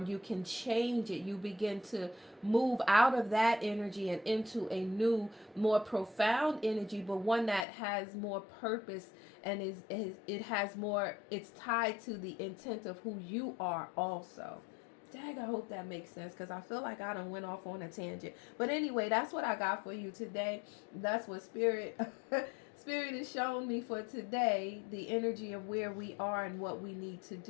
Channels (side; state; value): right; drops out; at 7.7 s